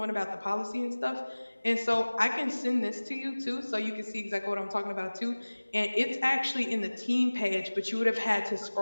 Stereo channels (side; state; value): both; inverted; correlation -1.00